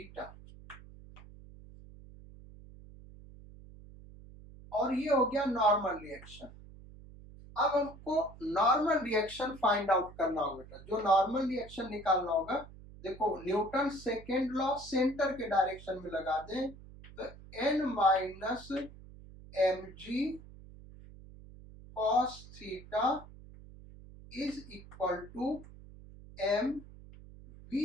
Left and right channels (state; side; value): noise; right; hum, 18 dB below the sound